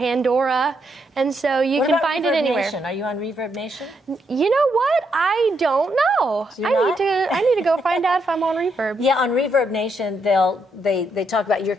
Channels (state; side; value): normal; both; correlation 0.78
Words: And so you can find it anywhere. Nation? Are you on Reverb Nation? You know what? I don't know. I need to go find out if I'm on Reverb. Yeah, on Reverb Nation, they talk about your